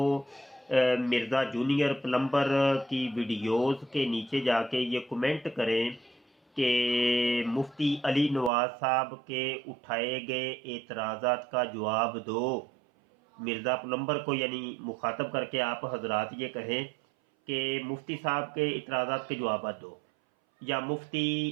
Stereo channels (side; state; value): left; drops out; at 8.5 s